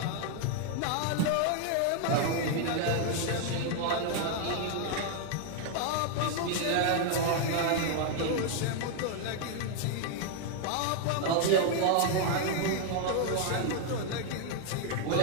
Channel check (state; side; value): different; both; correlation 0.00